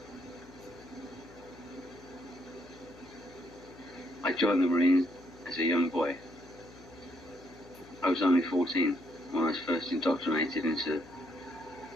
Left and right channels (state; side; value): noise; left; hum, 21 dB below the sound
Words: I joined the Marines as a young boy. I was only 14 when I was first indoctrinated into